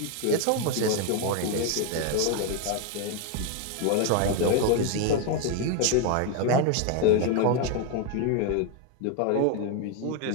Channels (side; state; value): both; different; correlation 0.01